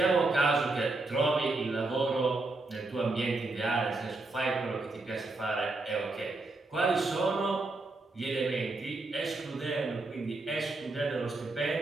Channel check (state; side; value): quieter; left; 3.2 dB